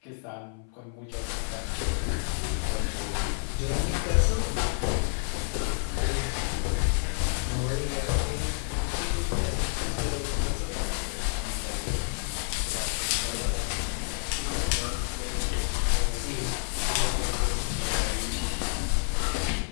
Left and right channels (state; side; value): silent; right; 56 dB below the other